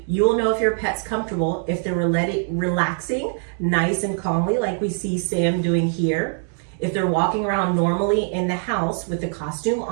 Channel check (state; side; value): silent; left; 61 dB below the other